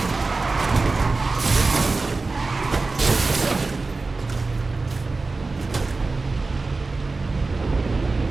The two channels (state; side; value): quieter; left; 3.7 dB